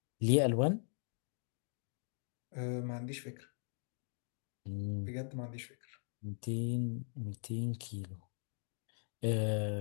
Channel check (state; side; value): silent; right; 51 dB below the other